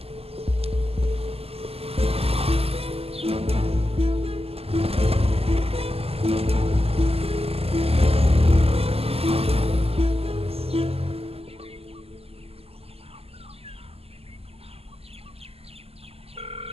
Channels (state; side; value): late; left; 0.29 ms